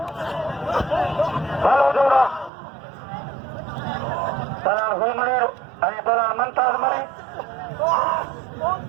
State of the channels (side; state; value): left; drops out; at 2.5 s